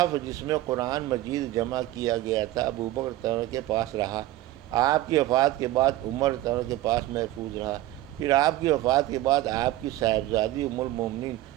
جس میں قرآن مجید جمع کیا گیا تھا ابو بکر رضی کے پاس رہا، آپ کی وفات کے بعد عمر رضی کے پاس محفوظ رہا، پھر آپ کی وفات کے بعد آپ کی صاحبزادی ام المومنین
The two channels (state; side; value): quieter; left; 15.7 dB